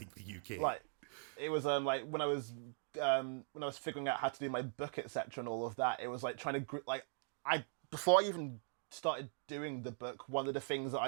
the UK. Like it was like when I was figuring out how to do my book, etc., and all of that. It was like trying to before I even started doing the book, one of the things that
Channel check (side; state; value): left; silent; digital silence